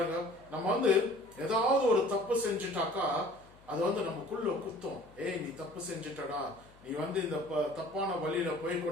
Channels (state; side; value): noise; left; hum, 26 dB below the sound